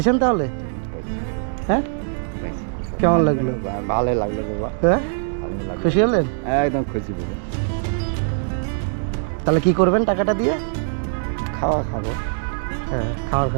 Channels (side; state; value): left; silent; 64 dB below the other